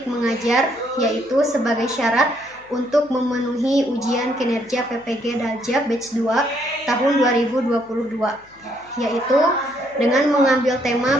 mengajar, yaitu sebagai syarat untuk memenuhi ujian kinerja PPG Daljab Batch 2 tahun 2022, yaitu dengan mengambil tema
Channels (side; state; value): left; noise; hum, 30 dB below the sound